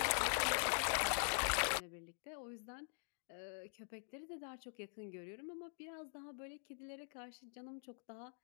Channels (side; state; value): right; silent; digital silence